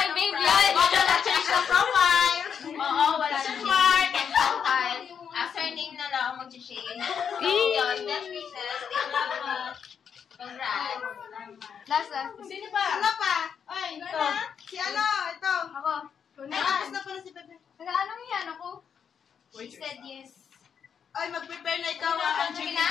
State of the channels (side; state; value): right; quieter; 7.4 dB